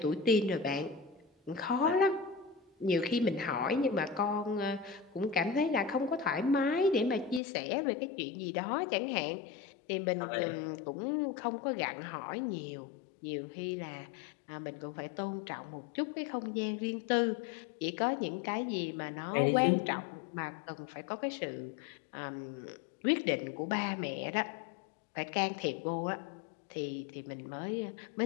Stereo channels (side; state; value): right; drops out; at 7.4 s